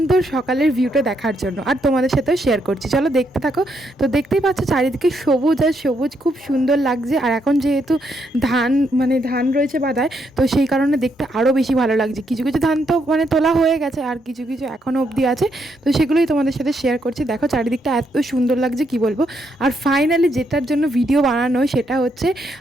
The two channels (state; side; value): normal; both; correlation 0.77